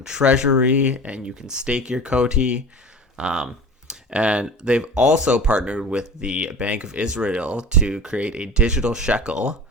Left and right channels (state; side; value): normal; both; correlation 0.37